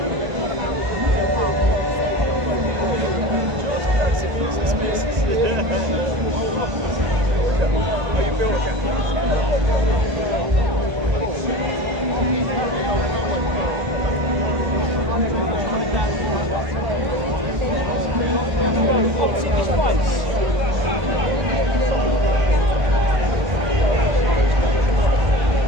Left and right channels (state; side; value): late; left; 1.9 ms